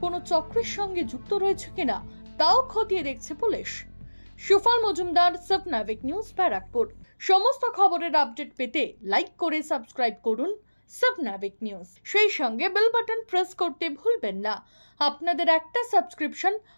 কোনো চক্রের সঙ্গে যুক্ত রয়েছে কিনা তাও খতিয়ে দেখছে পুলিশ। সুফল মজুমদার, সফনাভিক নিউজ, ব্যারাকপুর। সমস্ত খবরের আপডেট পেতে লাইক করে সাবস্ক্রাইব করুন সফনাভিক নিউজ। সেই সঙ্গে বেল বাটন প্রেস করতে ভুলবেন না। আপনাদের একটা সাবস্ক্রিপশন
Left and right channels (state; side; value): inverted; both; correlation -1.00